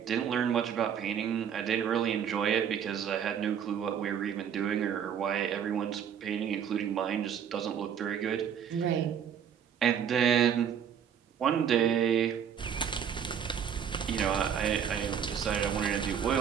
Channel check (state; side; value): quieter; left; 8.3 dB